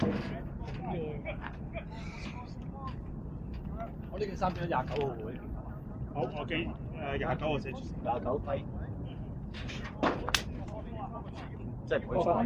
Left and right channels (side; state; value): both; identical; correlation 1.00